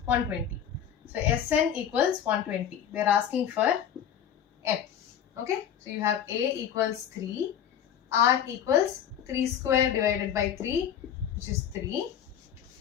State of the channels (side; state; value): right; quieter; 9.3 dB